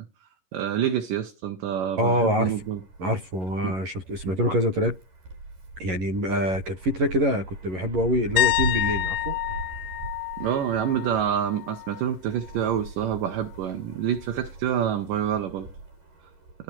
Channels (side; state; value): left; late; 11 ms